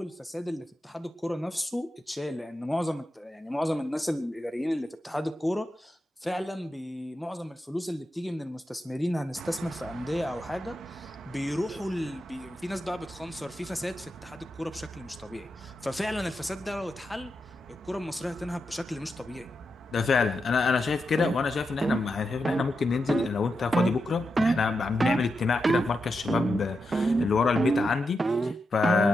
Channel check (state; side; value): normal; both; correlation 0.87